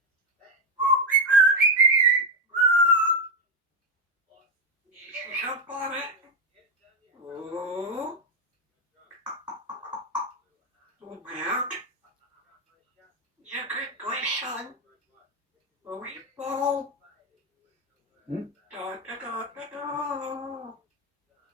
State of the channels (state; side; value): normal; both; correlation 0.07